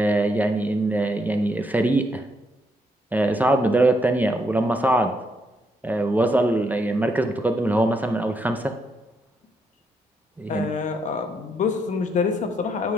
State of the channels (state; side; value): normal; both; correlation 0.76